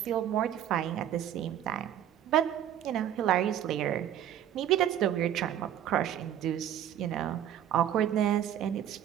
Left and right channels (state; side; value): quieter; left; 10.7 dB